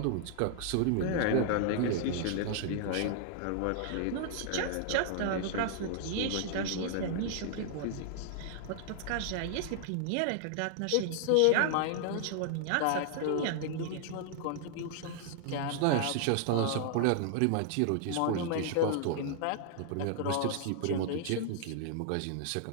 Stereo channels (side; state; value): both; different; correlation -0.01